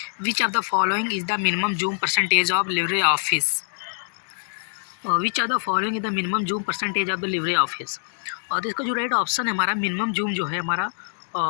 Which of the following is the minimum zoom percentage of Libre office? Which of the following is the minimum zoom percentage of the Libre office? और इसका जो राइट ऑप्शन है हमारा, मिनिमम जूम जो है हमारा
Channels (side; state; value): right; silent; digital silence